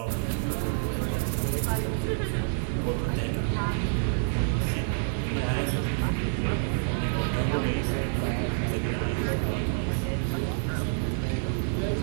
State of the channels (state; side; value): silent; left; digital silence